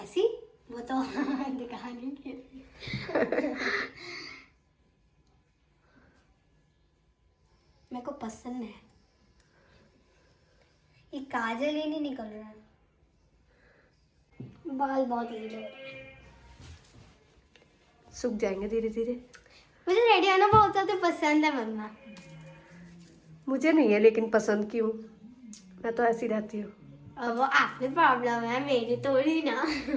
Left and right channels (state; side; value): identical; both; correlation 1.00